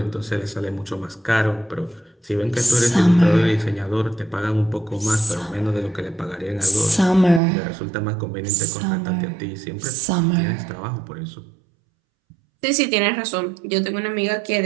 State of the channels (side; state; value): left; drops out; at 7.4 s